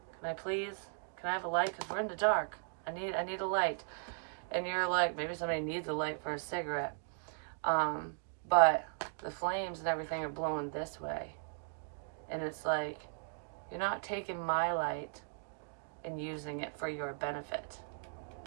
Can I please? Can I have a light? Because we're in the dark. I need a light. And you're like, maybe somebody needs a light for a cigarette. But the flames and everything are blowing this way. And it's like, you're not taking my light and using it for your benefit.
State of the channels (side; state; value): left; silent; digital silence